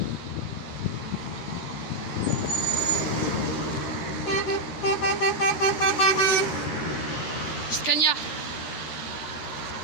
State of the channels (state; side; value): late; right; 12 ms